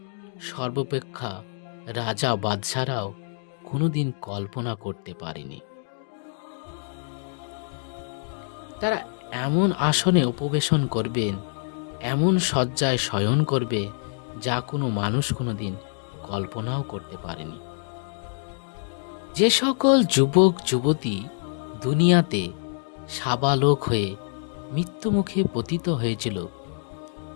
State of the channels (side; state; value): right; silent; 61 dB below the other